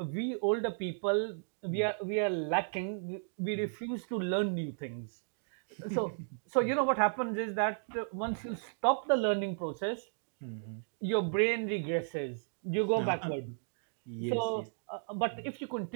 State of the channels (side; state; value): left; silent; digital silence